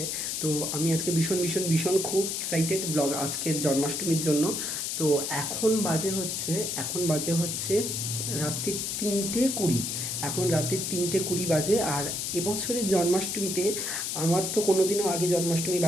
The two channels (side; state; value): left; noise; hiss, 2 dB below the sound